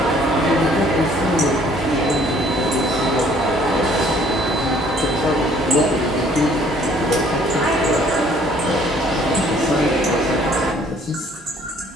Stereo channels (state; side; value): normal; both; correlation 0.59